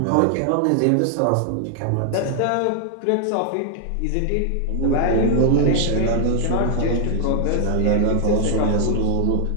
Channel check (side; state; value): both; different; correlation 0.00